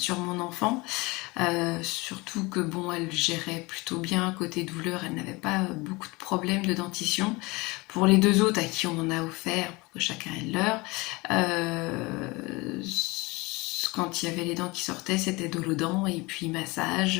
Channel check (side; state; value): right; quieter; 24.2 dB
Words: mon enfant, surtout que bon, elle gérait plutôt bien côté douleur, elle n'avait pas beaucoup de problèmes de dentition. Pour les deux autres à qui on en a offert, pour que chacun ait le leur, quand il y avait les dents qui sortaient, c'était dolodent et puis